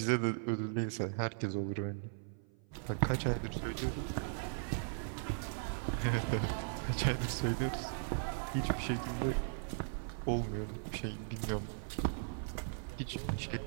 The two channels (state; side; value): silent; left; 52 dB below the other